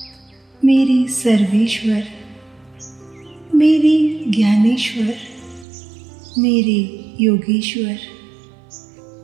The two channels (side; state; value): left; drops out; at 5.7 s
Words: मेरे सर्वेश्वर, मेरे ज्ञानेश्वर, मेरे योगेश्वर,